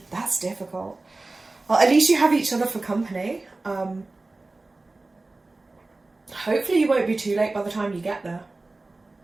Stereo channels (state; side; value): quieter; left; 3.2 dB